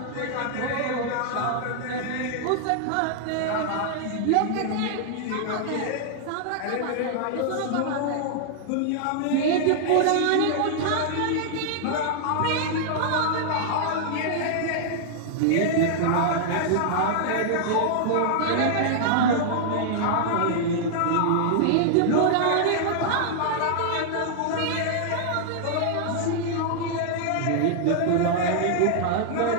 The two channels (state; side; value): different; both; correlation -0.01